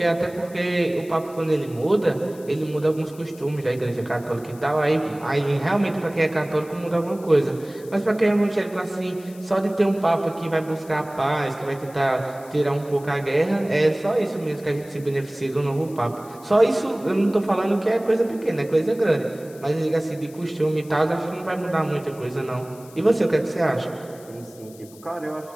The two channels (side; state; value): left; noise; hiss, 23 dB below the sound